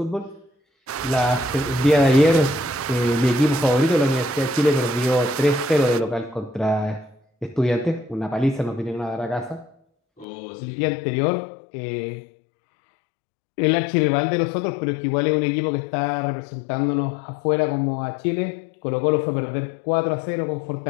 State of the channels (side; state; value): right; drops out; at 10.2 s